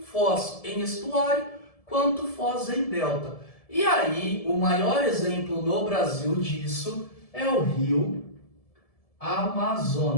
foz em estuário quanto foz em delta. E aí, o maior exemplo no Brasil disso é o rio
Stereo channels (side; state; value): right; late; 1.7 ms